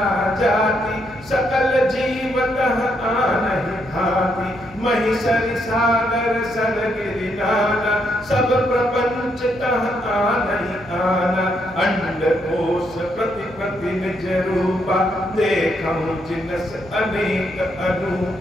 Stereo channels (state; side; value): noise; left; hum, 22 dB below the sound